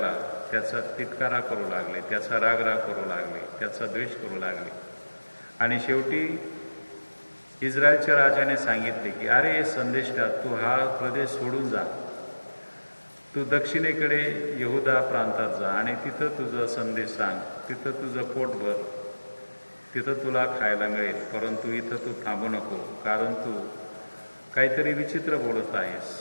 त्याचा तिटकारा करू लागले, त्याचा रागराग करू लागले, त्याचा द्वेष करू लागले. आणि शेवटी इस्रायलच्या राजाने सांगितले की अरे संदेष्टा, तू हा प्रदेश सोडून जा, तू दक्षिणेकडे यहुदा प्रांतात जा आणि तिथं तुझं संदेश सांग, तिथं तुझं पोट भर, तिथं तुला खायला मिळेल. परंतु इथं तू थांबू नको, कारण तू काहीतरी विचित्र बोलत आहेस,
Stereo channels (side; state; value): both; inverted; correlation -1.00